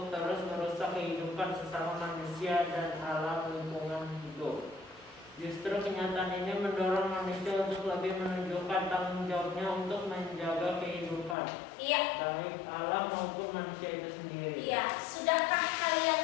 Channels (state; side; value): drops out; right; at 11.4 s